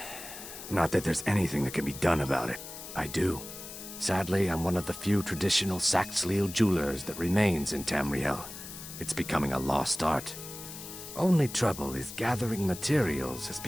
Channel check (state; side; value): noise; left; hiss, 12 dB below the sound